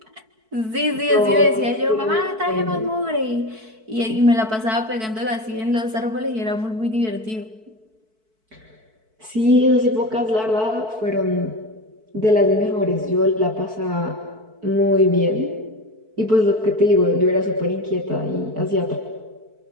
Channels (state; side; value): late; left; 4.6 ms